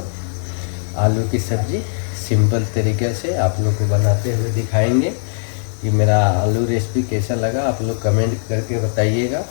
आलू की सब्ज़ी सिंपल तरीके से आप लोग को बनाते हुए दिखाएंगे। कि मेरा आलू रेसिपी कैसा लगा आप लोग कमेंट करके बताइएगा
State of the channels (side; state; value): right; silent; digital silence